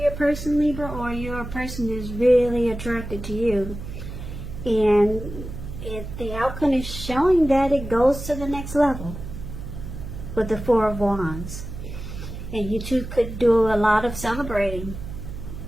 person, Libra, or your person is really attracted to you. And the outcome is showing that it goes to the next level with the Four of Wands. And you two could do a lot of celebrating.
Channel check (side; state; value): right; noise; hum, 9 dB below the sound